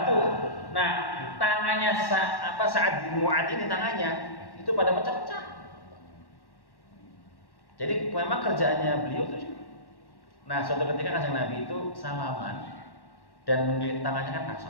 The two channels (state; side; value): late; right; 1.1 ms